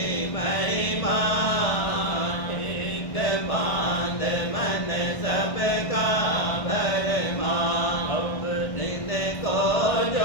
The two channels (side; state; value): right; late; 1.6 ms